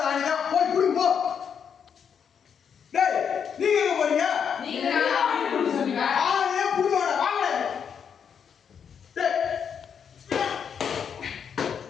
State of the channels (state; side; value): quieter; right; 7.4 dB